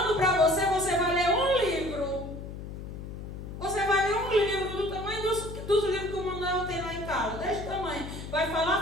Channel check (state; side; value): noise; left; hum, 9 dB below the sound